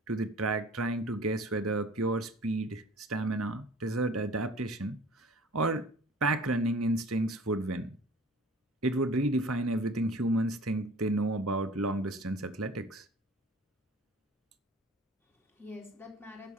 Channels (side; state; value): both; normal; correlation 0.46